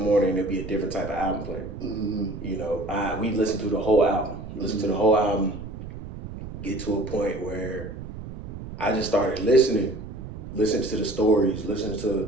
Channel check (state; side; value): noise; right; rumble, 10 dB below the sound